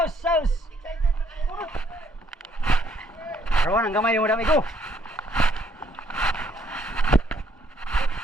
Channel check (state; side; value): normal; both; correlation 0.67